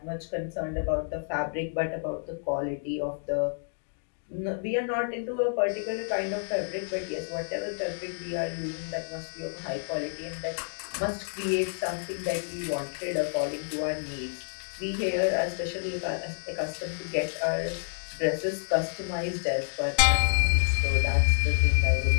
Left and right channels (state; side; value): silent; right; digital silence